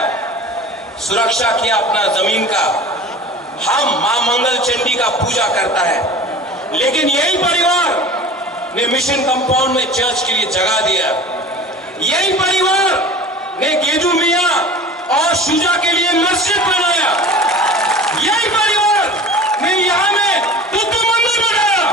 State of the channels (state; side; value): normal; both; correlation 0.38